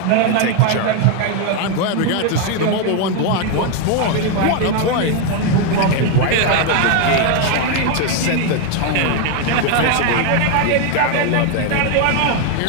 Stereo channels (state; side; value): different; both; correlation 0.01